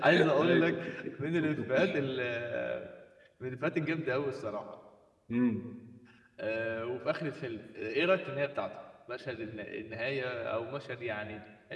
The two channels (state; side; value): identical; both; correlation 1.00